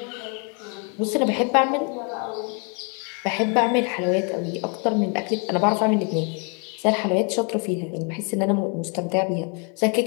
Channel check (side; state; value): right; quieter; 36.5 dB